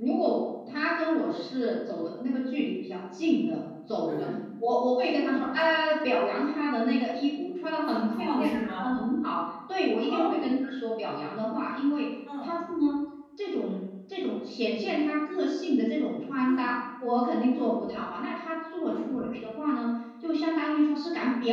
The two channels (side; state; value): both; identical; correlation 1.00